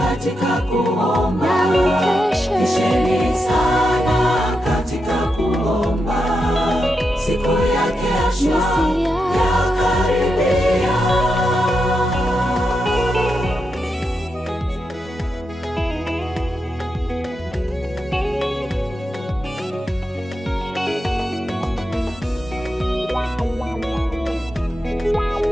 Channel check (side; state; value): both; normal; correlation 0.86